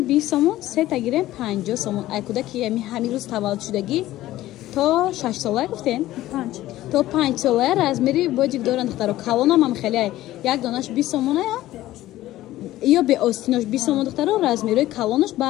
20 سومون سه تا گیرن 50 سومون ای کودکی همین روز تولد شدگی تا 6 ساله گفتین 5 تا 5 ساله размери бодик доранд духтаро калонам ҳам хеле як донаш 20 сомона یا به آستیناش 20 сомон духтаро размери калонаш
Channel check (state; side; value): quieter; right; 15.3 dB